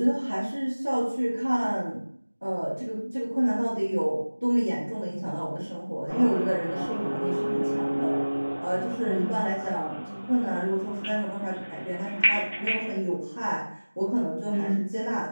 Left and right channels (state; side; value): inverted; both; correlation -1.00